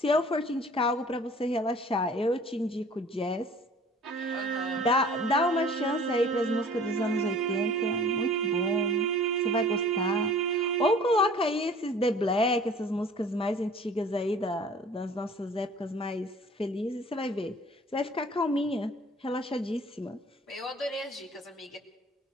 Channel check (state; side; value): normal; both; correlation 0.48